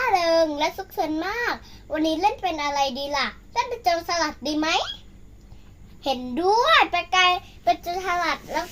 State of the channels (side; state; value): both; identical; correlation 1.00